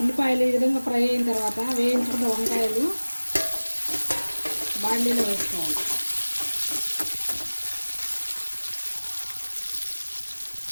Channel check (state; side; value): inverted; both; correlation -1.00